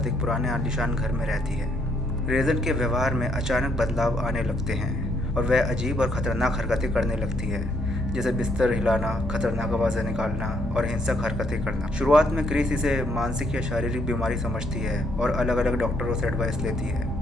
एक पुराने आलीशान घर में रहती है। रेजन के व्यवहार में अचानक बदलाव आने लगते हैं और वह अजीब और ख़तरनाक हरकतें करने लगती है, जैसे बिस्तर हिलाना, खतरनाक आवाज़ें निकालना और हिंसक हरकतें करना। शुरुआत में क्रिस इसे मानसिक या शारीरिक बीमारी समझती है और अलग अलग डॉक्टरों से एडवाइस लेती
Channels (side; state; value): both; normal; correlation 0.71